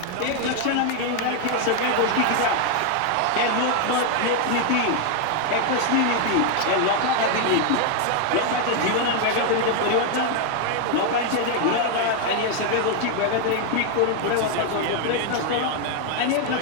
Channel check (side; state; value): both; different; correlation 0.00